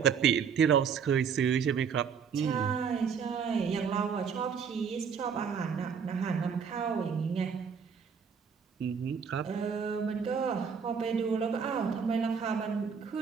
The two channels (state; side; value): quieter; left; 6.6 dB